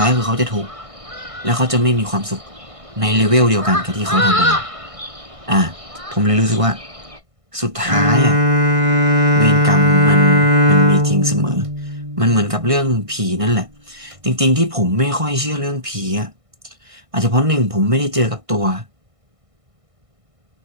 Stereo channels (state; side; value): late; left; 1.6 ms